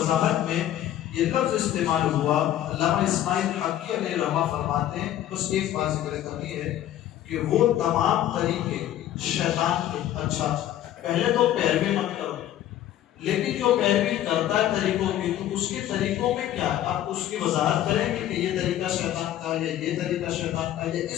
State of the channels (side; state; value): right; quieter; 12.4 dB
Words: میں یہ لفظ استعمال ہوا، علامہ اسماعیل حقی علیہ رحمہ فرماتے ہیں، بس ایک بات ذکر کرنی ہے کہ وہ تمام طریقے شیطان کے، اچھا پہلے تو پیروی مت کرو، لیکن جو پیروی کرتا ہے طریقوں کی تو اس کے طریقوں میں کیا ہے، آپ اس کی وضاحت کریں گے کہ یہ طریقہ شیطان کا ہے، یہ طریقہ شیطان کا ہے،